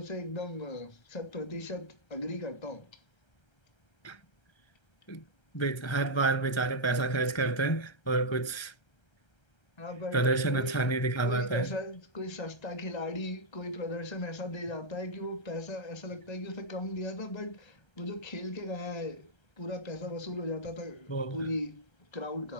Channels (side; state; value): right; late; 1.3 ms